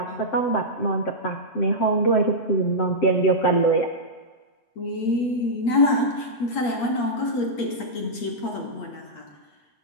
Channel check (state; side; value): late; right; 8.5 ms